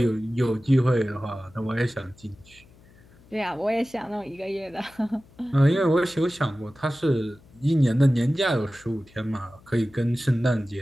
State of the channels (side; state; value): left; noise; hum, 26 dB below the sound